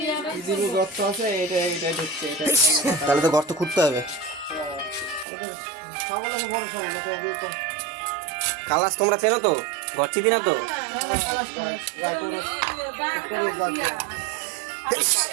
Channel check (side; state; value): left; drops out; at 5.2 s